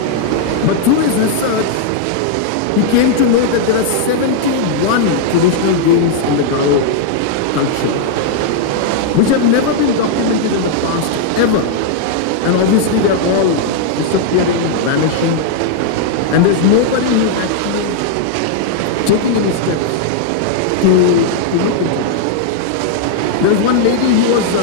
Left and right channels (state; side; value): different; both; correlation -0.01